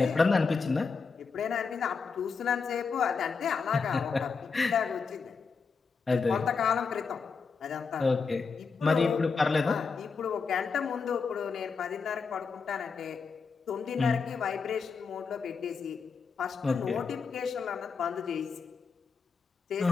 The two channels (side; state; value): right; quieter; 5.1 dB